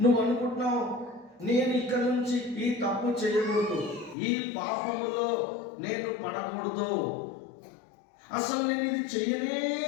అనుకుంటున్నావు, నేను ఇక్కడ నుంచి ఈ తప్పు చేయకూడదు, ఈ పాపములో నేను పడకూడదు, అసలు నేను ఇది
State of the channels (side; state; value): right; drops out; at 4.2 s